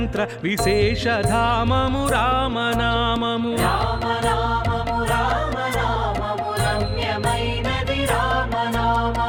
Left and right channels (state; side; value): identical; both; correlation 1.00